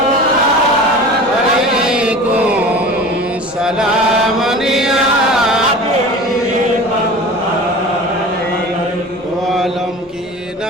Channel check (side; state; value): both; normal; correlation 0.37